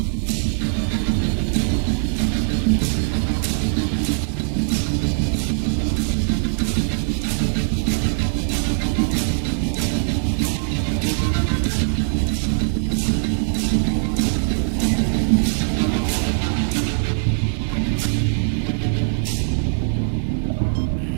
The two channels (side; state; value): left; silent; digital silence